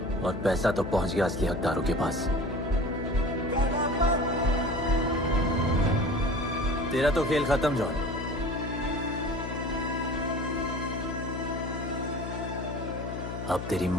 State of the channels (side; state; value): left; noise; hum, 6 dB below the sound